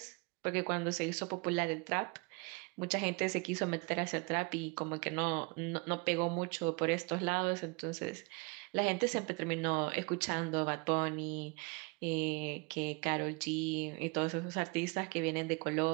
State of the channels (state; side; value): quieter; left; 29.7 dB